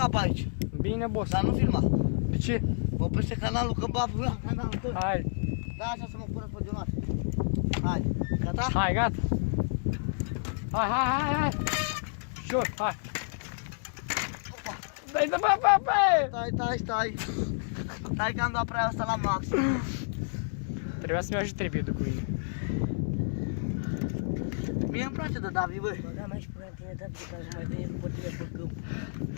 pe aici. Bine, boss. Dar nu filma. De ce? Oprește canalul că baf la canalul tău. Hai. Da, așa să mă pună pe dionar. Hai, gata? Hai, gata. Hai. Șur, hai. Dai de bă. Stai. Stai că am dat prea asta la max. Trebuia să-mi ajut trepiedul cu mine. Mie îmi place de Davi, băi. Da, mai și până tine, Davi, ca să mai veni după tine pe câmp.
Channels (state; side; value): silent; right; digital silence